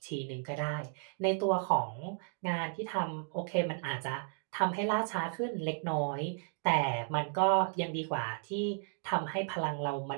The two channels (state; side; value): silent; left; 55 dB below the other